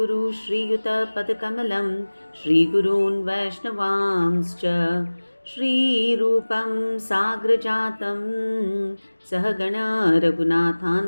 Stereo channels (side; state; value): both; inverted; correlation -1.00